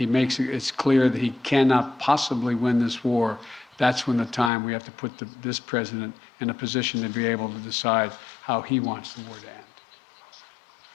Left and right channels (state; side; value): drops out; right; at 4.5 s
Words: makes it's clear that he cannot possibly win this war, that's when the time we have to put this president in a position to be able to decide how he wants the war to end.